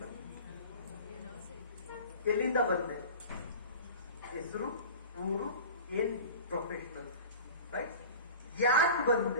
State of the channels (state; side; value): inverted; both; correlation -0.37